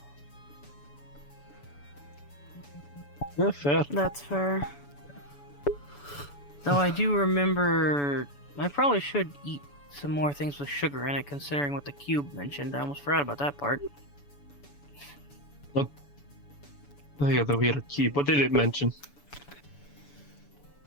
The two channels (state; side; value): late; right; 7.0 ms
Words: Yeah, fair. That's fair. Though I do remember... I probably should eat some more things with sugar in it, considering what the cube mentioned. I almost forgot about that part. Oh yeah, the weird key. What did it mention?